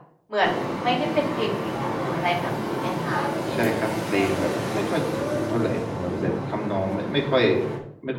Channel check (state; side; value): identical; both; correlation 1.00